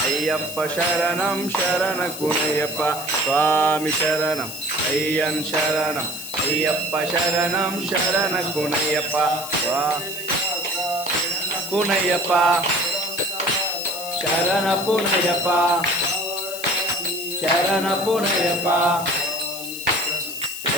అయ్యప్ప శరణం శరణ పునయ్యప్ప స్వామి శరణం అయ్యన్ శరణం అయ్యప్ప శరణం శరణ పునయ్యప్ప పునయ్యప్ప శరణ పునయ్యప్ప శరణ పునయ్యప్ప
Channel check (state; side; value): noise; left; hiss, 9 dB below the sound